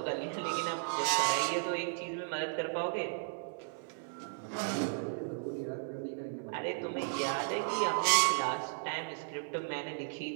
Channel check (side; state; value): left; silent; 54 dB below the other